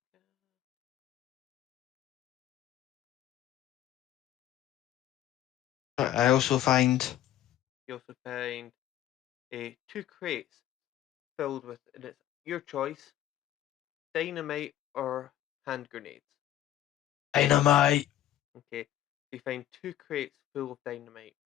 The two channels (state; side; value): quieter; right; 12.4 dB